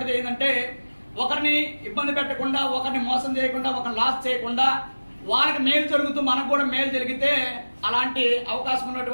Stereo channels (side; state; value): both; inverted; correlation -1.00